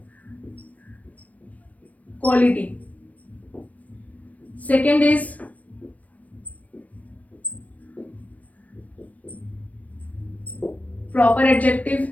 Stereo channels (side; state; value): right; late; 0.069 ms